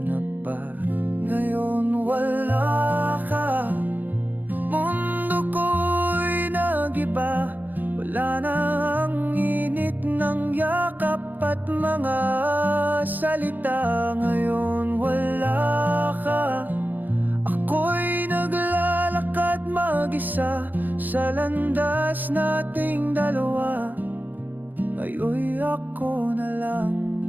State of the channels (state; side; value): late; left; 0.086 ms